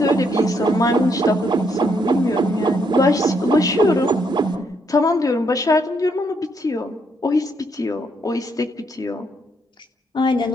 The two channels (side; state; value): both; normal; correlation 0.74